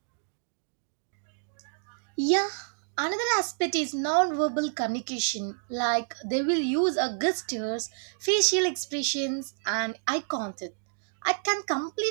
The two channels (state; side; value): silent; left; digital silence